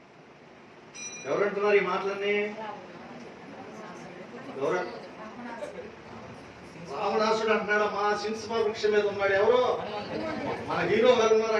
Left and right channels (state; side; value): identical; both; correlation 1.00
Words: ఎవరంటున్నారు ఈ మాటలన్నీ? రావణాసుడు అంటున్నాడు. మా సింహ వృక్షం మీద ఉన్నాడు. ఎవరు? మన హీరో గారు ఉన్నారు